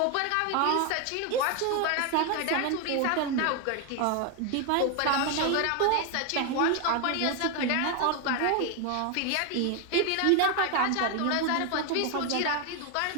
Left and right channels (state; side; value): different; both; correlation 0.01